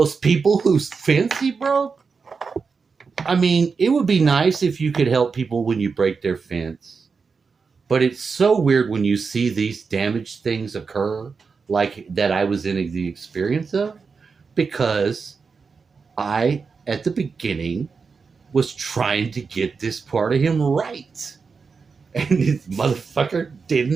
people whose fence he broke? I mean, it would be nice if you could help people when you break their fence, but it's so weird when you see these damaged things occur, like that I was in the experience of, because I, at the beginning, was trying to get this part of him right. And this motherfucker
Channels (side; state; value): left; quieter; 5.1 dB